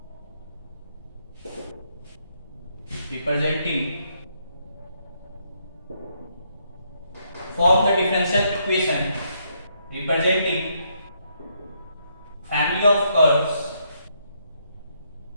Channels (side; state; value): both; inverted; correlation -0.74